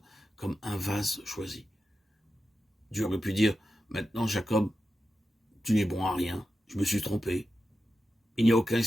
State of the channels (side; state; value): both; normal; correlation 0.90